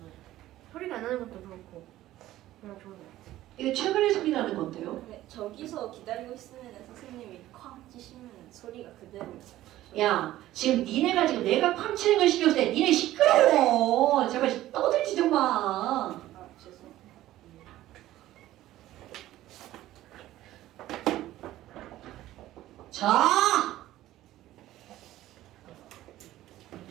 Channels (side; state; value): left; quieter; 14.7 dB